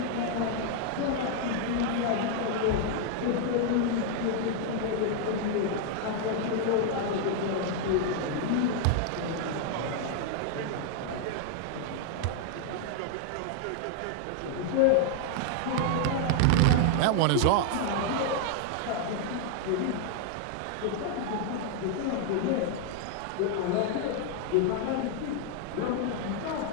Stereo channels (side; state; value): both; different; correlation 0.00